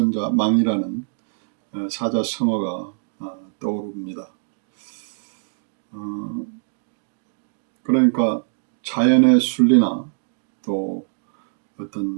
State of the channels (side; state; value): left; silent; digital silence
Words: 망이라는 사자성어가 떠오릅니다. 어, 그러니까 자연의 순리나 또